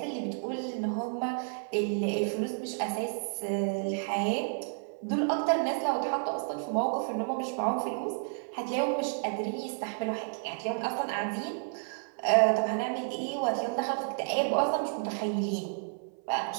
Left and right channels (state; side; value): silent; left; 57 dB below the other